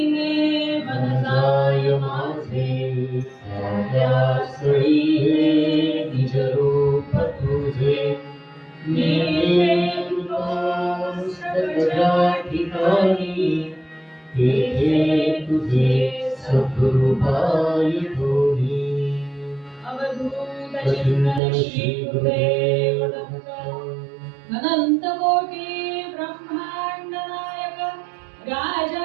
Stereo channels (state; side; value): drops out; left; at 21.4 s